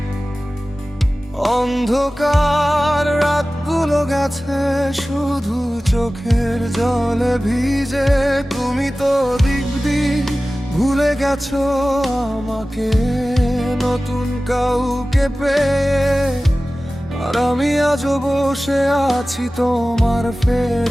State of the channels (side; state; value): both; normal; correlation 0.97